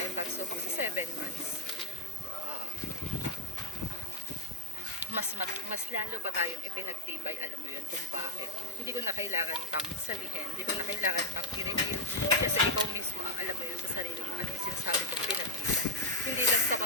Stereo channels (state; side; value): normal; both; correlation 0.08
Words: pagsubok sa 7 months. Mas lalo pa tayong ipinagtibay, alam mo yun, kung bakit. Hindi ko na kailangan pang sabihin, hindi ko na kailangan pang i-review. Kasi ikaw mismo, alam mo yun sa sarili mo, ano yung sinasabi kong pinagtibay. Hindi lang sa